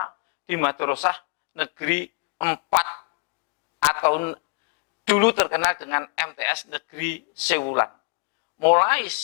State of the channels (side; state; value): right; quieter; 32.1 dB